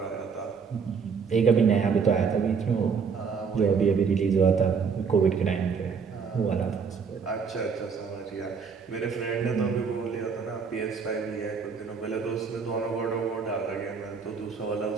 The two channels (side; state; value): left; quieter; 5.8 dB